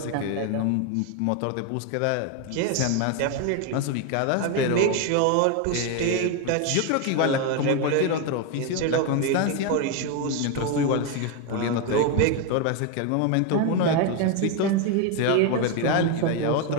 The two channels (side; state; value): both; different; correlation 0.01